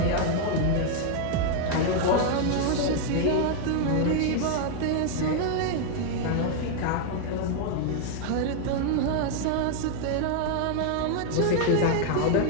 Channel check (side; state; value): both; different; correlation 0.00